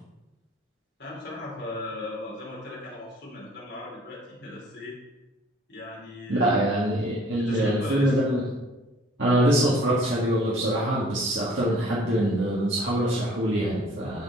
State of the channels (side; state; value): both; normal; correlation 0.55